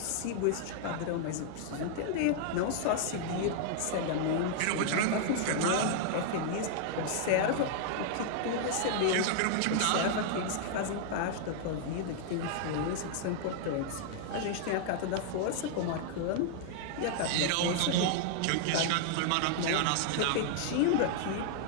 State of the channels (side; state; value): both; different; correlation 0.00